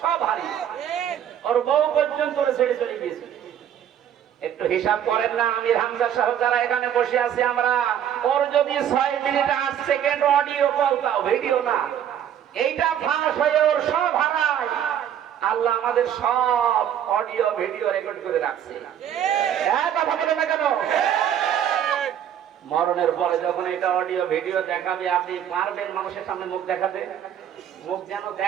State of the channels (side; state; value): left; quieter; 9.8 dB